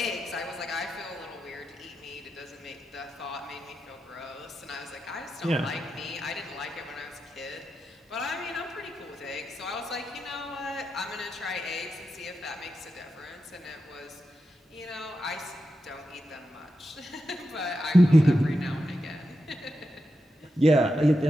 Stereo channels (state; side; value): normal; both; correlation 0.88